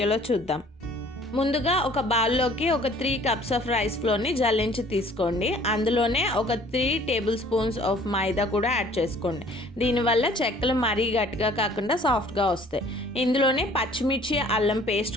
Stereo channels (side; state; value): both; normal; correlation 0.53